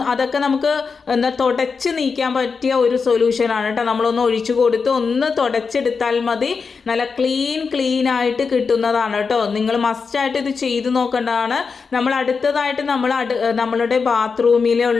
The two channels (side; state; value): right; quieter; 5.2 dB